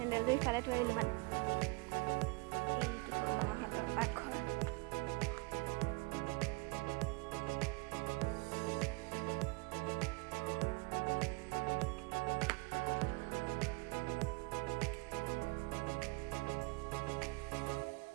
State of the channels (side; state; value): left; quieter; 25.6 dB